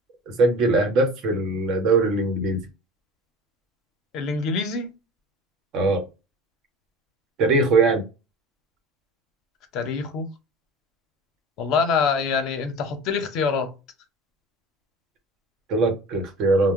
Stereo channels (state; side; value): normal; both; correlation 0.38